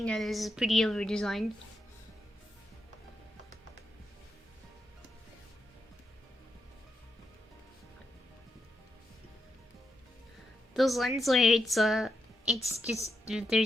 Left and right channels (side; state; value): both; normal; correlation 0.85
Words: that is pretty over designed. Those lens where it's just